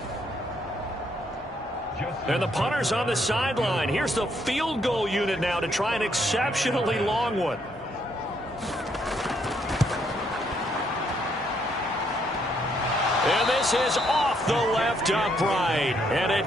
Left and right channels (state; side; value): normal; both; correlation 0.72